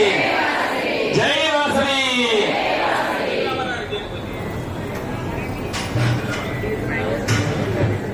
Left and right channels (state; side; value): identical; both; correlation 1.00